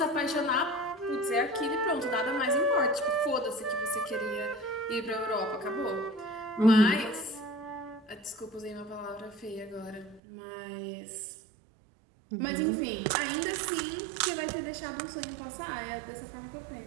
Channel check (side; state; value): left; drops out; at 10.2 s